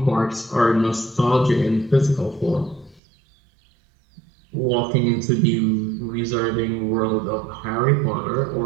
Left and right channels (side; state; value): left; drops out; at 3.0 s